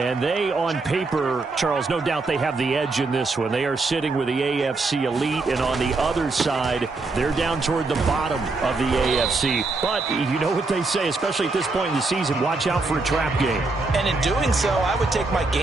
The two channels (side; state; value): left; quieter; 3.6 dB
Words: they, on paper, Charles, no doubt they have the edge in this one. They are sitting with the AFC elite, and on the other side, they're down toward the bottom of the AFC. But you know what they say, especially at this point in the season, watch out for a trap game. And in doing so, I would take my